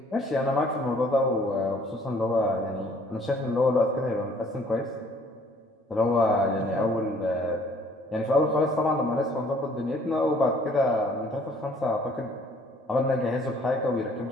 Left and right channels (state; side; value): normal; both; correlation 0.58